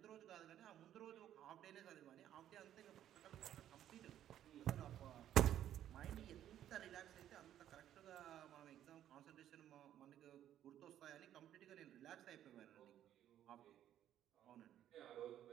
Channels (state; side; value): quieter; left; 11.3 dB